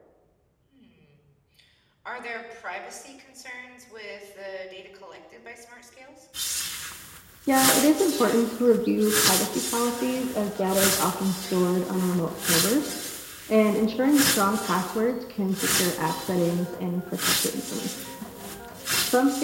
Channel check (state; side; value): identical; both; correlation 1.00